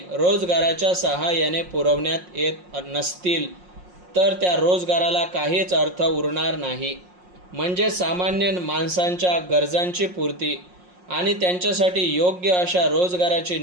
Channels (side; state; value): left; late; 5.6 ms